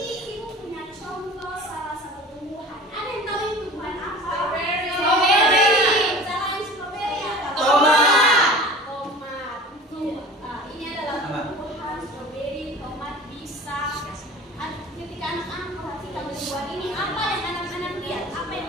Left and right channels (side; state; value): both; normal; correlation 0.40